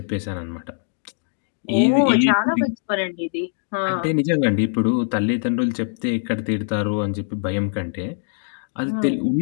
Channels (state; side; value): silent; right; digital silence